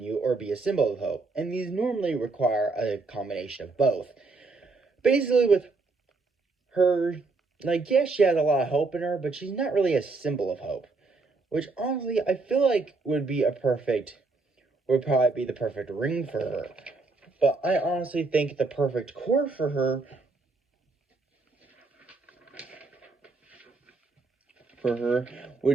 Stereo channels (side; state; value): left; quieter; 3.7 dB